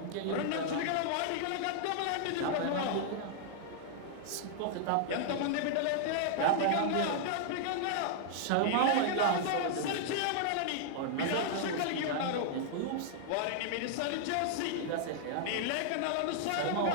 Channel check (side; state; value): both; different; correlation -0.01